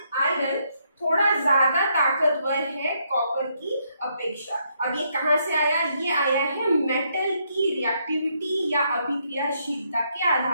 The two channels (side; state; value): both; inverted; correlation -0.74